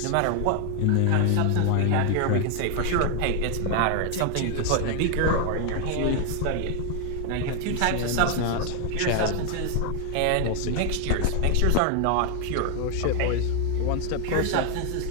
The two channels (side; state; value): both; different; correlation 0.00